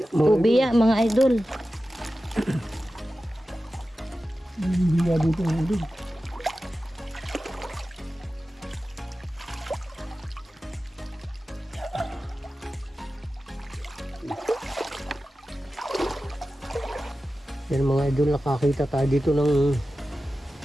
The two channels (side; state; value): both; normal; correlation 0.94